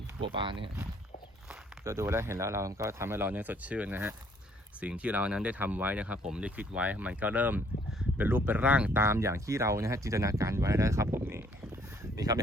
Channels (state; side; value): normal; both; correlation 0.63